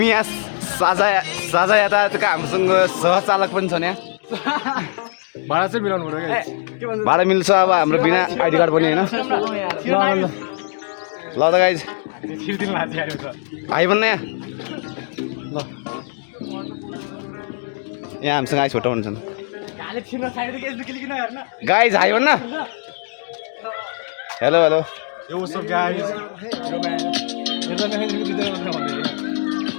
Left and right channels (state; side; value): silent; right; digital silence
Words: यहाँ साझा यातायातका हामीसँग सहचालक पनि छन् यहाँ। भाडा चाहिँ मिलाउनु पर्यो। भाडा मिल्छ अब हाम्रो बिना आइडी कार्ड पनि होइन। ल त गाइज हाई भन्न यहाँ ल, यहाँ हामीसँग आइस फोटो हुन्छन् गाइज हाई भन्न। हेलो हेलो